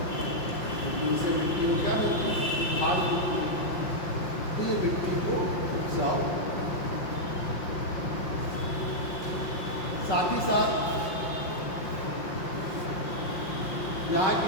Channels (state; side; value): late; right; 5.7 ms